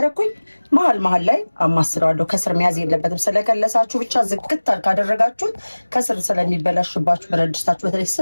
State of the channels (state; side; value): inverted; both; correlation -1.00